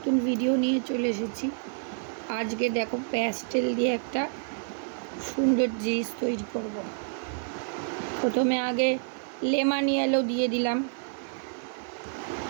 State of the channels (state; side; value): silent; left; 59 dB below the other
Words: ভিডিও নিয়ে চলে এসেছি। আজকে দেখো প্যাস্টেল দিয়ে একটা সুন্দর জিনিস তৈরি করব। প্রথমে আগে লেমন ইয়েলো দিয়ে দিলাম।